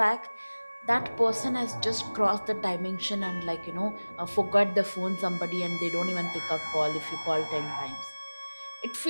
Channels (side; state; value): both; inverted; correlation -1.00